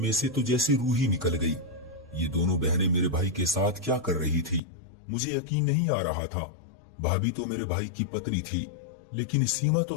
से तो जैसी रूह ही निकल गई। ये दोनों बहनें मेरे भाई के साथ क्या कर रही थी, मुझे यकीन नहीं आ रहा था। भाभी तो मेरे भाई की पत्नी थी, लेकिन सीमा तो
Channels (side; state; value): right; drops out; at 4.6 s